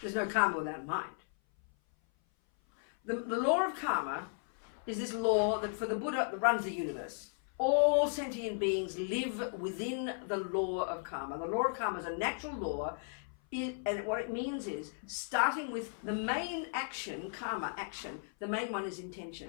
no karma without mind. The law of karma is this law that for the Buddha that runs the universe. All sentient beings live within the law of karma. The law of karma is a natural law, and what it means is, starting with the main action, karma action, the main one is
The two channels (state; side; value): silent; right; 54 dB below the other